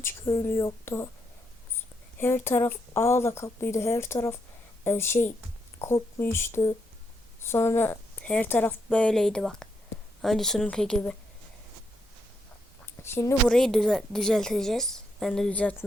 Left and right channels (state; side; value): normal; both; correlation 0.79